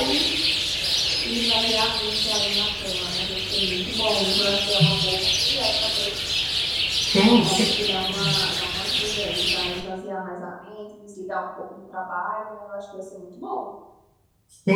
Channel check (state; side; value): identical; both; correlation 1.00